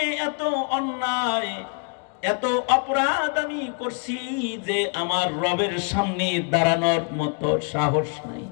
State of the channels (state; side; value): quieter; right; 36.8 dB